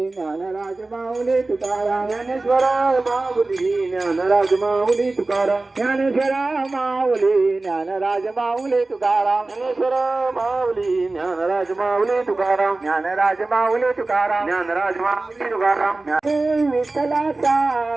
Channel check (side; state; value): left; quieter; 3.2 dB